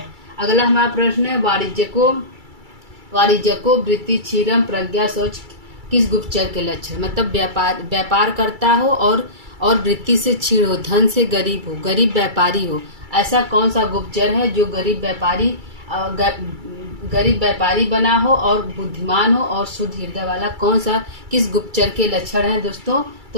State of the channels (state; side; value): late; left; 2.3 ms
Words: अगला हमारा प्रश्न है, वाणिज्यको वृत्ति क्षीरम प्रज्ञा शौच किस गुप्तचर के लक्षण? मतलब व्यापार करता हो और वृत्ति से क्षीण हो, धन से गरीब हो, गरीब व्यापारी हो, ऐसा कौन सा गुप्तचर है जो गरीब व्यापारी बना हो और बुद्धिमान हो और शुद्ध हृदय वाला? किस गुप्तचर के लक्षण है दोस्तों?